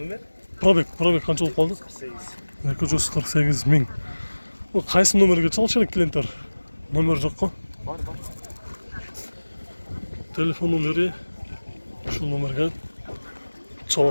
Пробег канча болуп калды? 248.000. Бул кайсы номерге чалыш керек клиенттер? Номер жокко? Бар. Телефон номери ушул номерге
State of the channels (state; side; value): inverted; both; correlation -1.00